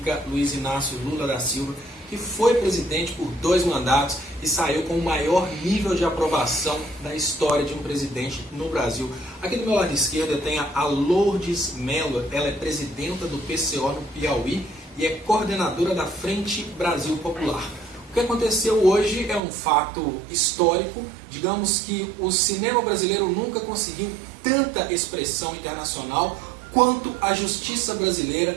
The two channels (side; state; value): left; drops out; at 19.4 s